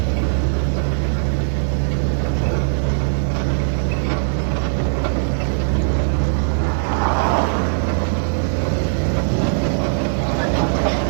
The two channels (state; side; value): silent; left; digital silence